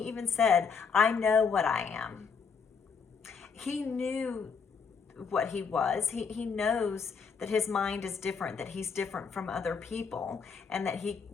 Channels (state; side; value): quieter; right; 5.7 dB